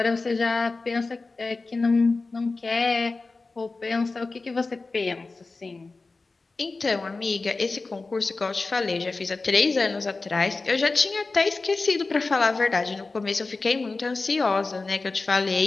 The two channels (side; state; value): right; quieter; 3.7 dB